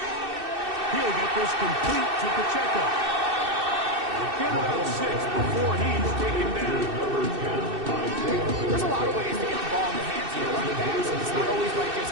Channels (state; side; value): late; left; 2.6 ms